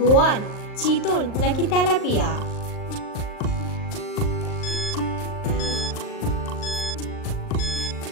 চিতল নাকি তেলাপিয়া?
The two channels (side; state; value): right; late; 38 ms